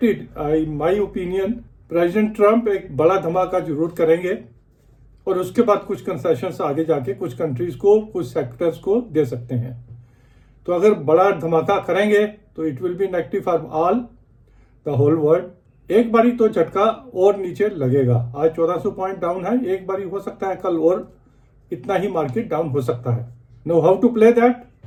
my opinion, president Trump एक बड़ा धमाका जरूर करेंगे और उसके बाद कुछ कंसेशंस आगे जाके कुछ कंट्रीज को, कुछ सेक्टर्स को दे सकते हैं। तो अगर बड़ा धमाका करेंगे तो it will be negative for all the whole world. एक बारी तो झटका और नीचे लगेगा। आज 1400 पॉइंट डाउन है, एक बारी हो सकता है कल और इतना ही मार्केट डाउन हो सकता है। Know how to play that.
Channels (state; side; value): identical; both; correlation 1.00